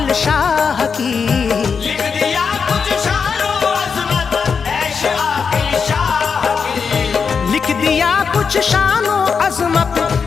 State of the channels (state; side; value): quieter; right; 5.8 dB